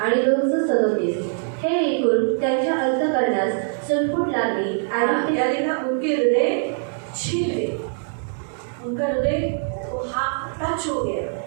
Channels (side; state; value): left; silent; 64 dB below the other